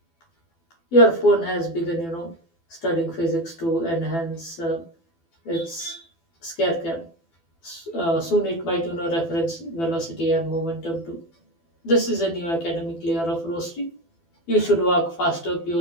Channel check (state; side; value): late; right; 12 ms